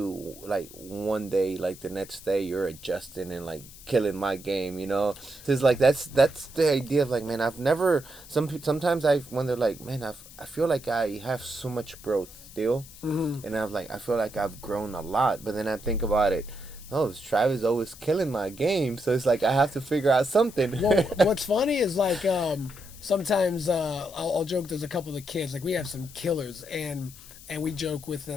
like, one day, like, the next day, you're adjusting and, like, killing my game, So it's like, that's the idea of, like, man, I've never, sometimes I wonder, like, man, I feel like I have so much growth still, and I feel like I've grown a lot, but then I think about it, Travis always killing my game, so it's like I have to figure out something. Well, what's funny is, like, sometimes I'll joke, there's a couple of the kids, like, we have some killers, and we joke with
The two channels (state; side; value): noise; left; hiss, 18 dB below the sound